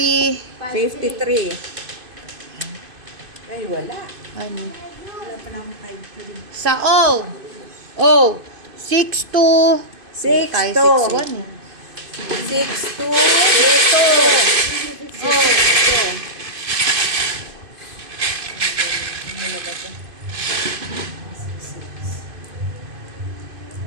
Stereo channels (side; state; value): left; late; 2.5 ms